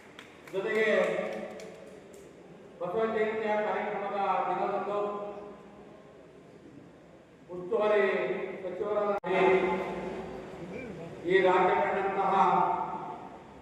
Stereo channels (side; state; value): both; identical; correlation 1.00